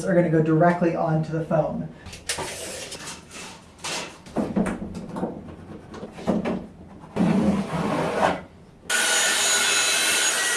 are going to go directly onto the foam.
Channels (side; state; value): both; identical; correlation 1.00